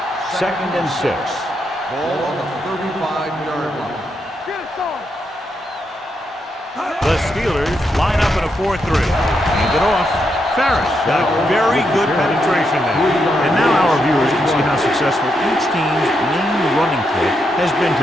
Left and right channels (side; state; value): both; normal; correlation 0.81